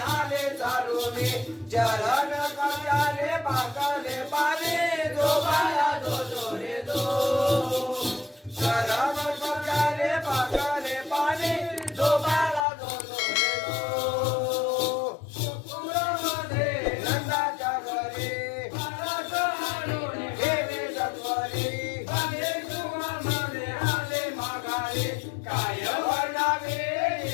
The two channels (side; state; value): right; drops out; at 12.7 s